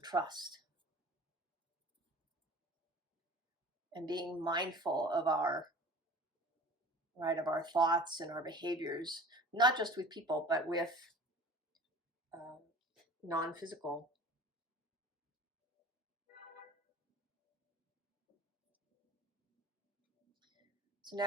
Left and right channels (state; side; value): normal; both; correlation 0.42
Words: trust. And being mindful of our thoughts and our behaviors, not just with people, but with non-physical. So